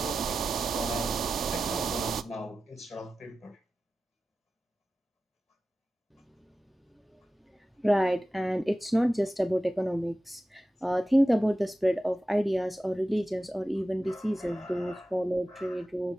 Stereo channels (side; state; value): both; normal; correlation 0.94